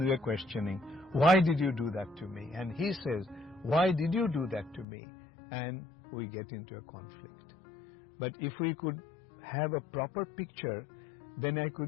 we are questioning, why did you do that to me? And he says, why did you do that to me? And we get into a conflict. But if we could have a proper picture, then I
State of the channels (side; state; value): right; drops out; at 4.9 s